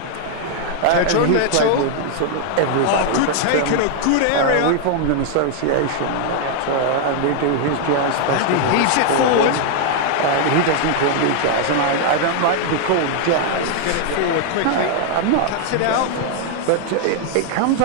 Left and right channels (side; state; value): both; different; correlation 0.00